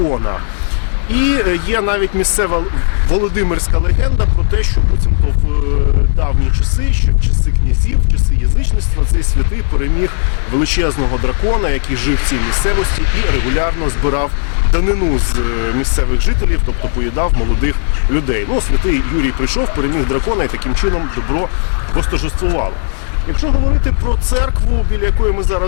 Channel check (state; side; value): silent; right; digital silence